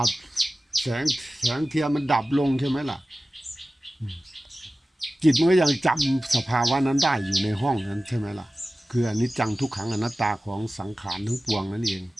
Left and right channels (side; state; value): both; normal; correlation 0.96